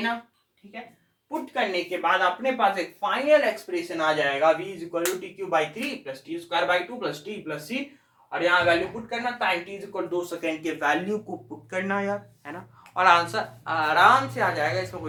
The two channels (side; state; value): both; identical; correlation 1.00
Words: ठीक है, पुट करने के बाद अपने पास एक फाइनल एक्सप्रेशन आ जाएगा v is equal to t cube by 3 plus t square by 2 plus t plus c. और यहाँ वैल्यू पुट करना, time t is equal 2 second के वैल्यू को पुट करना यार, है ना. और आंसर आराम से आ जाएगा. इसमें